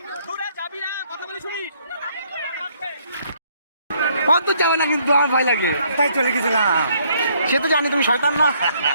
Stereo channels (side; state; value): both; inverted; correlation -0.67